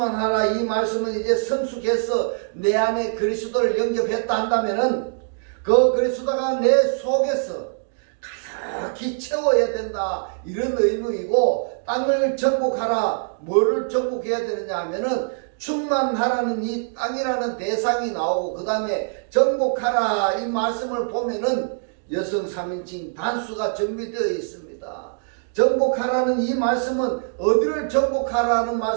이 말씀은 이제 성숙해서 내 안에 그리스도를 영접했다 한다면은 그 그리스도가 내 속에서 가득히 채워야 된다 이런 의미이고, 땅을 정복하라 뭐를 정복해야 되느냐 하면은 충만하라는 이 땅이라는 대상이 나오고 그 다음에 정복하라 이 말씀을 보면은 여성 3인칭 단수가 정비되어 있습니다. 정복하라는 이 말씀은 어디를 정복하라는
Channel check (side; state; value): left; silent; digital silence